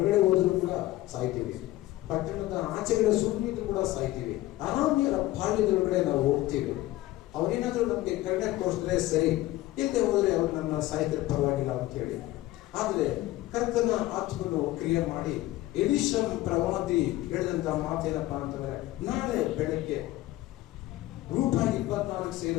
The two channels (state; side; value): quieter; right; 16.6 dB